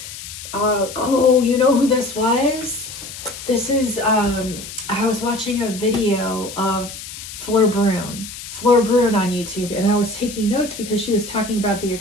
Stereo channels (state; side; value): noise; left; hiss, 12 dB below the sound